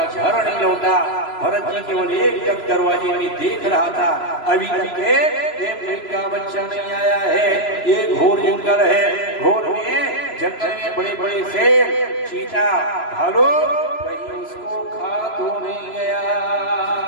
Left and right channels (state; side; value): late; right; 3.0 ms